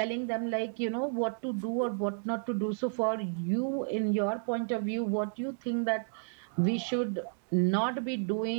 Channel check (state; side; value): silent; left; digital silence